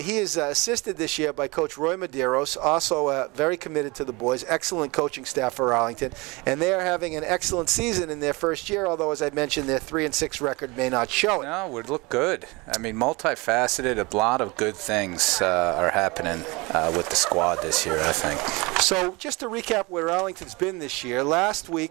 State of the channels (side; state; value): left; quieter; 25.4 dB